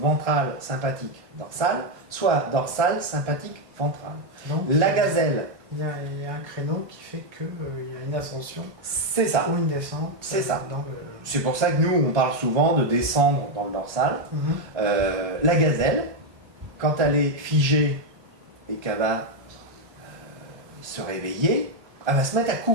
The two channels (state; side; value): late; left; 1.4 ms